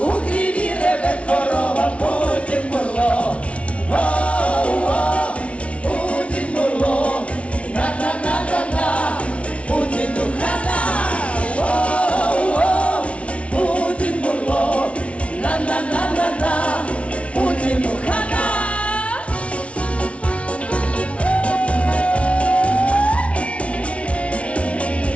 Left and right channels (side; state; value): right; late; 0.062 ms